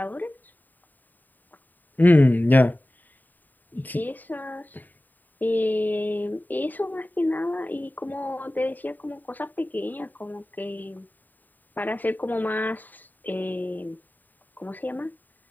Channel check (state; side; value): late; right; 0.088 ms